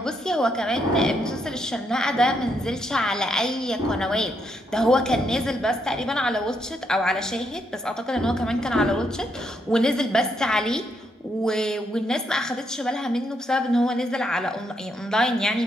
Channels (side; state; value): both; normal; correlation 0.77